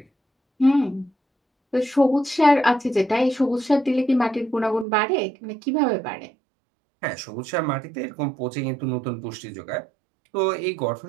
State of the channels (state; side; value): drops out; left; at 4.9 s